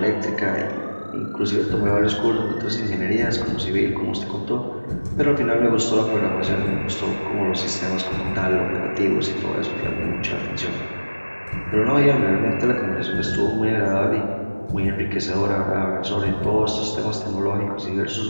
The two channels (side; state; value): both; inverted; correlation -1.00